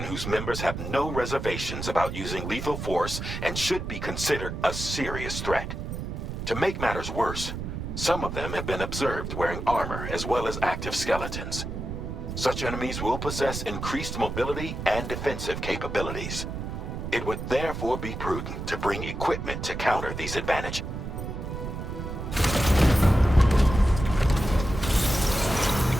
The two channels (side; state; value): right; noise; rumble, 6 dB below the sound